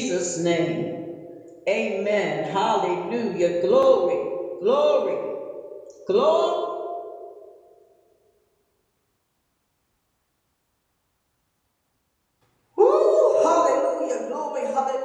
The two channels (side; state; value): both; identical; correlation 1.00